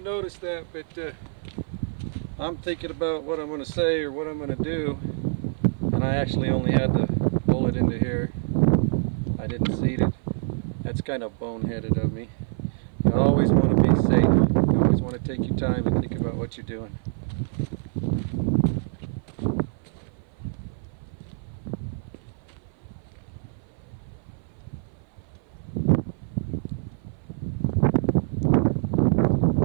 noticed that, but I'm thinking about what I'm going to say or what I'm going to do, and I actually only had the bullet into here. I didn't seat it. That's kind of boneheaded of me. You always want to be safe. You always want to take your time and think about what you're doing.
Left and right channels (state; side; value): silent; left; 57 dB below the other